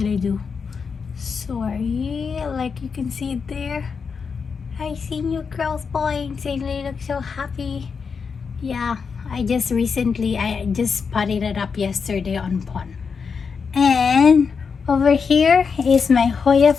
I do? Sorry, like you can see it there. I see new growth points and they look so happy. Yeah, I just potted it up yesterday on pond. And over here is my Hoya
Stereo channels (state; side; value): quieter; right; 5.7 dB